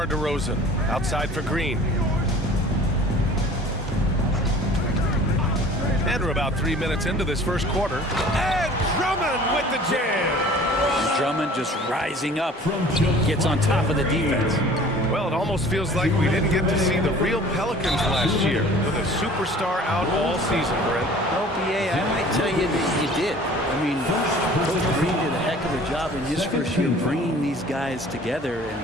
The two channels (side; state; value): both; normal; correlation 0.47